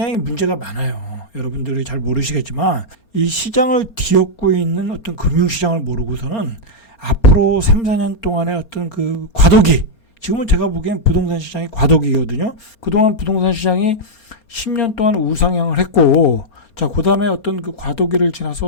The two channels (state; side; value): late; right; 4.3 ms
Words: 문제가 많아요. 여러분들이 잘 모르시겠지만 이 시장을 뒤엎고 있는 어떤 금융시장을 모르고서는 앞으로 3, 4년 동안의 어떤 그 과도기, 지금은 제가 보기엔 부동산 시장이 과도기거든요. 그동안 부동산 시장이 10년 동안 우상향을 했고, 자, 그 다음에 어떤 그 과도기를